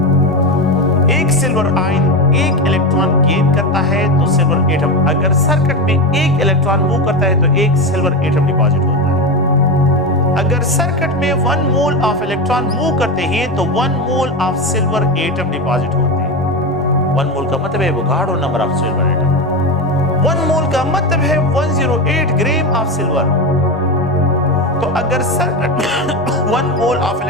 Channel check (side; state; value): right; noise; rumble, 24 dB below the sound